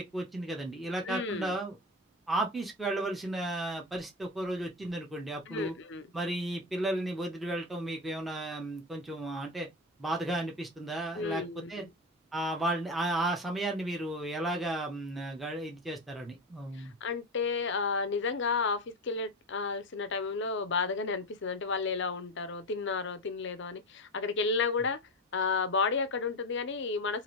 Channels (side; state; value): both; normal; correlation 0.20